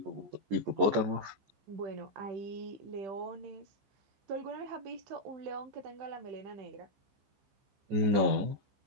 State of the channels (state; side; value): late; left; 14 ms